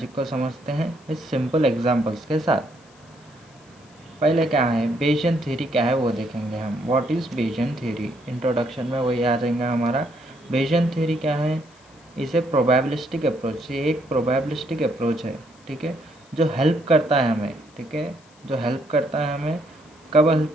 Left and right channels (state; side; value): noise; left; hiss, 29 dB below the sound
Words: को समझते हैं इस सिंपल एग्जांपल्स के साथ। पहले क्या है बेयसियन थ्योरी, क्या है वो देखेंगे हम। व्हाट इज़ बेयसियन थ्योरी, इंट्रोडक्शन में वही आ जाएगा हमारा। बेयसियन थ्योरी क्या है, इसे प्रोबेबिलिस्टिक अप्रोच, ये एक प्रोबेबिलिस्टिक अप्रोच है। ठीक है, जो हेल्प करता है हमें। ठीक है, जो हेल्प करता है हमें, कब हेल्प